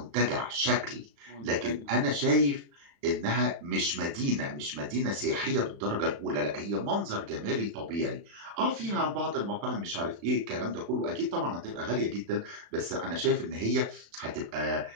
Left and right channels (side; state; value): left; late; 35 ms